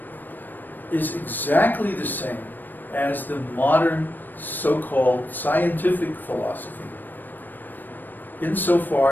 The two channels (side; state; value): right; late; 0.090 ms